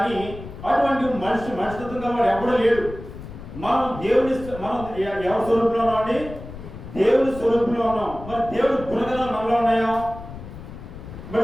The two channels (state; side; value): noise; left; rumble, 13 dB below the sound